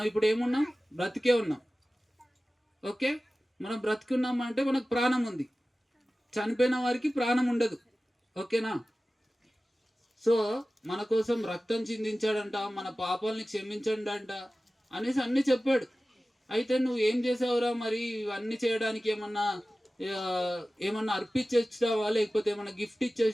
ఇప్పుడు ఏమున్నాం? బ్రతికే ఉన్నాం. ఓకే, మనం బ్రతికున్నాం అంటే మనకు ప్రాణం ఉంది. చనిపోయిన వారికి ప్రాణం ఉండదు. ఓకేనా? సో మన కోసం రక్తం చిందించాడంట, మన పాపాలని క్షమించండంట అనేసి అన్నీ చెప్పాడు. అయితే నువ్వు ఏం చేసావురా మరి? ఇవన్నీ చేయడానికి ఏమన్నా అర్పించి వచ్చినావా, లేకపోతే ఏమన్నా గిఫ్ట్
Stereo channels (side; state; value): both; normal; correlation 0.96